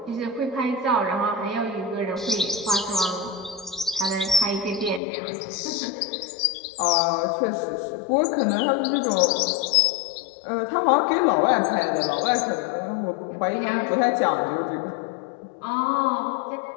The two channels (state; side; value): drops out; right; at 5.0 s